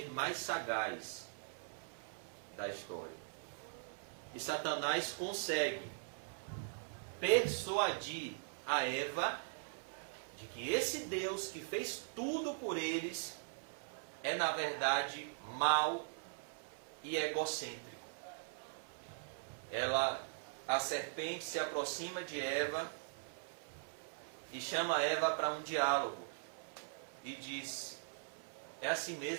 mais sagaz da história. E Satanás consegue persuadir a Eva de que esse Deus que fez tudo por eles é, na verdade, mau e egocêntrico. A serpente se aproxima de Eva e chama Eva para um diálogo e diz: é assim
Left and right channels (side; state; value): left; silent; 50 dB below the other